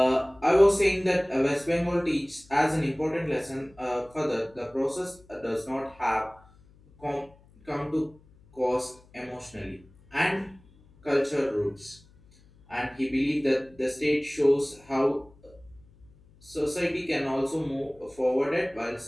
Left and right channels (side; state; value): left; noise; hum, 27 dB below the sound